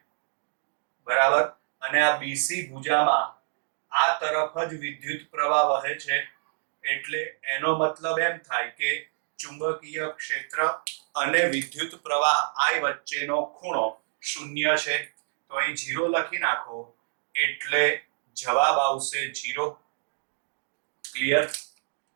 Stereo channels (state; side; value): silent; left; digital silence